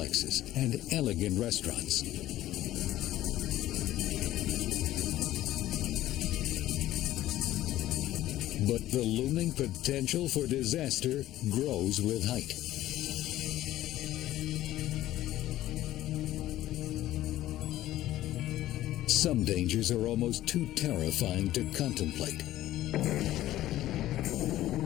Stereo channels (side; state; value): right; quieter; 14.4 dB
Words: and elegant restaurants. But the looming potential for disaster grows with height. Some dangers are almost too terrifying to contemplate.